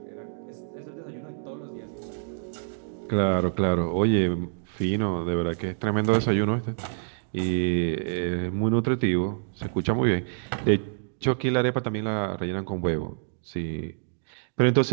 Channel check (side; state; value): left; silent; digital silence